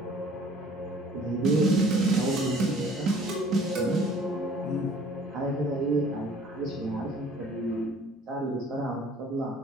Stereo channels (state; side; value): normal; both; correlation 0.53